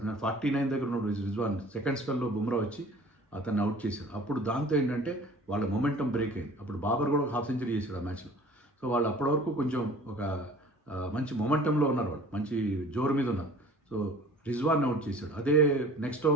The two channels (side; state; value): both; normal; correlation 0.47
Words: దగ్గర ఉన్నప్పుడు రిజ్వాన్ సెకండ్ స్పెల్లో బుమ్రా వచ్చి అతన్ని అవుట్ చేశాడు. అప్పుడు దాంతో ఏంటంటే వాళ్ళ మొమెంటం బ్రేక్ అయింది. అప్పుడు బాబర్ కూడా 1/2 సెంచరీ చేశాడు ఆ మ్యాచ్లో. సో వాళ్ళు అప్పటి వరకు కొంచెం ఒక మంచి మొమెంటంలో ఉన్నారు, వాళ్ళు మంచి జోరు మీద ఉన్నారు. సో రిజ్వాన్ అవుట్ చేశాడు. అదే నెక్స్ట్